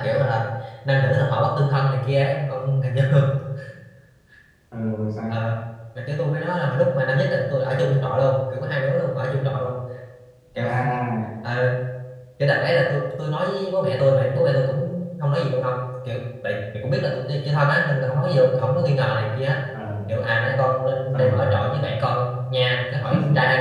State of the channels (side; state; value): both; identical; correlation 1.00